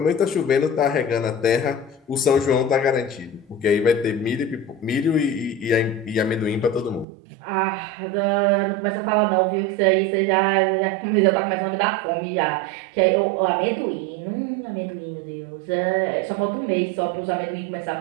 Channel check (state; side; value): drops out; left; at 7.1 s